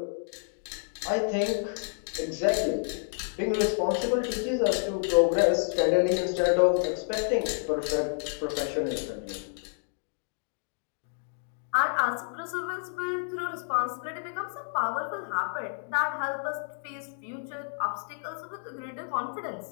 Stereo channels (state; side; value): silent; right; digital silence